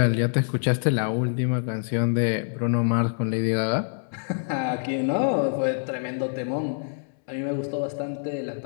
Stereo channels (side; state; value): right; silent; 61 dB below the other